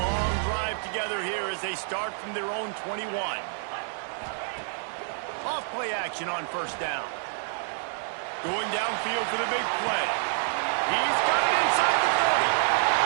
drive together here as they start from their own 21. Off play action on 1st down. Going downfield for the big play. He's got it inside the 30.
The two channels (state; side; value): silent; left; digital silence